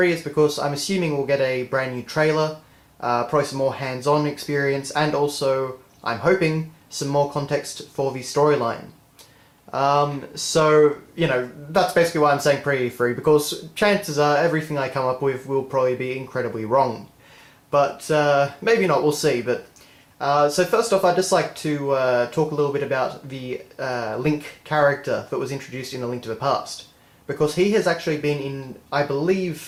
is because I'm assuming we'll get a brand new trailer, probably some more hands-on experience, and also, I'm hoping, some more context for the storyline. That's basically why I'm saying pre-E3, because chances are everything I come up with will probably be incredibly wrong. But maybe not, we'll see. So first off, I'd just like to talk a little bit about the Link character that was introduced in A Link to the Past. Because he has actually been in, I believe,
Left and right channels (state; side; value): identical; both; correlation 1.00